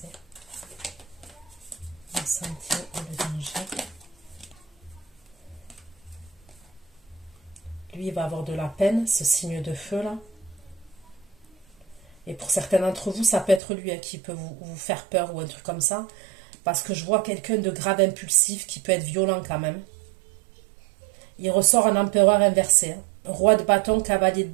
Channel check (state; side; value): drops out; left; at 13.6 s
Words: La santé et le danger. Lui, il va avoir de la peine, ce signe de feu là. Et pour certains d'entre vous, ça peut être lui qui peut vous faire peur ou un truc comme ça. Parce que je vois quelqu'un de grave impulsif qui peut être violent quand même. Il ressort un empereur inversé. Roi de bâton, cavalier de